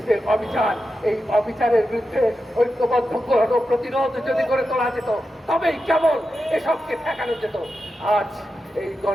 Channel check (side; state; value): both; normal; correlation 0.90